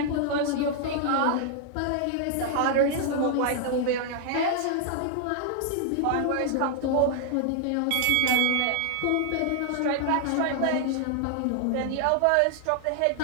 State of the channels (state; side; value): different; both; correlation 0.00